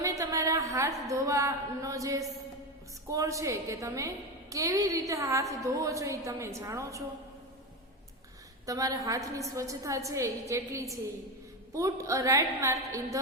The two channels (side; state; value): both; normal; correlation 0.17